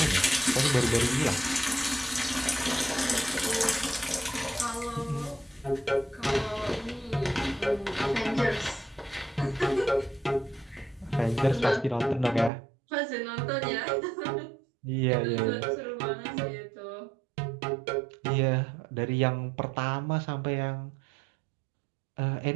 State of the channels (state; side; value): drops out; left; at 12.5 s